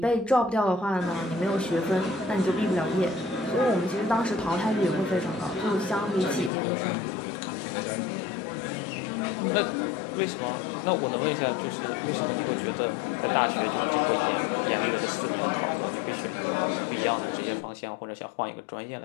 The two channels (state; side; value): drops out; right; at 6.5 s